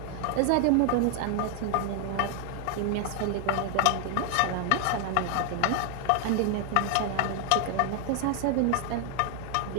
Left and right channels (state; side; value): different; both; correlation 0.00